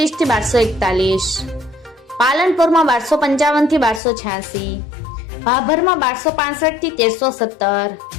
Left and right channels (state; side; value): drops out; right; at 4.0 s